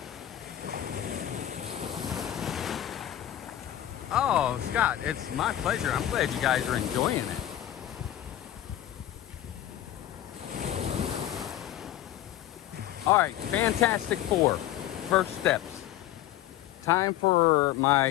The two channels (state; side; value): quieter; right; 12.6 dB